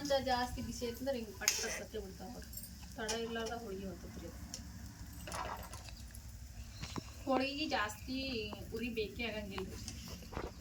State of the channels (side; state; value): both; identical; correlation 1.00